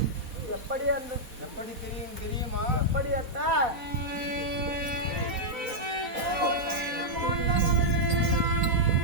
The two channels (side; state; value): left; late; 4.0 ms